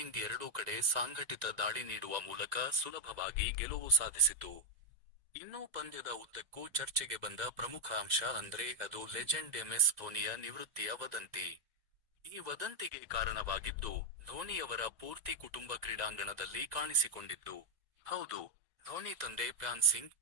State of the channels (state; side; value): late; left; 2.0 ms